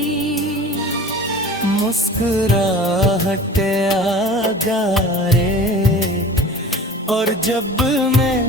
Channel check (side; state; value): both; normal; correlation 0.40